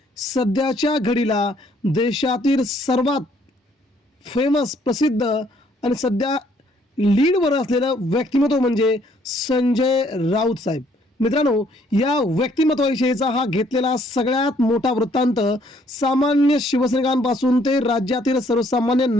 सध्याच्या घडीला देशातील सर्वात फेमस प्रसिद्ध आणि सध्या लीडवर असलेलं व्यक्तिमत्व म्हणजे संजय राऊत साहेब. मित्रांनो, या व्यक्तिमत्वाविषयीचा हा घेतलेला सगळ्यात मोठा वृत्तांत सामान्य शिवसैनिकांपासून ते राज्यातील सर्वसामान्य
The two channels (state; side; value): normal; both; correlation 0.65